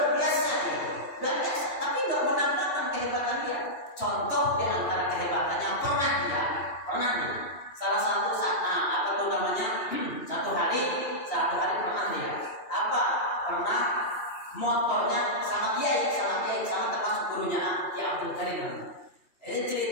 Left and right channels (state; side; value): late; right; 2.8 ms